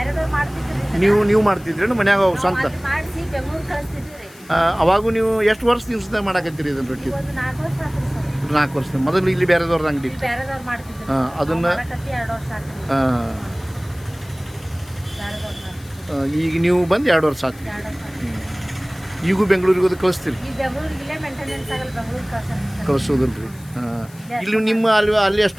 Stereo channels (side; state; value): left; noise; hiss, 23 dB below the sound